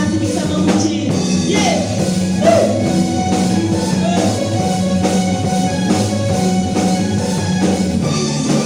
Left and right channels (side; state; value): both; identical; correlation 1.00